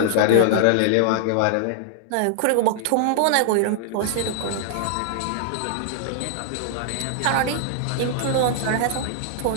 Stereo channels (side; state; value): both; different; correlation -0.01